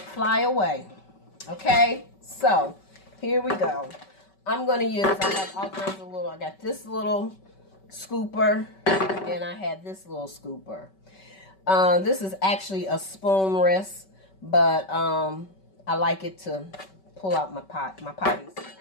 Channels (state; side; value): late; right; 5.2 ms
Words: away. Okay, so here we go. I'm going to use, I have all kinds of little, I got this little scooper and I have this little scooper. This is actually a spoon rest, but I like it to pull out my potties.